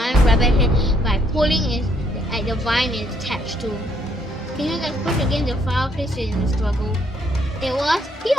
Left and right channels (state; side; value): normal; both; correlation 0.69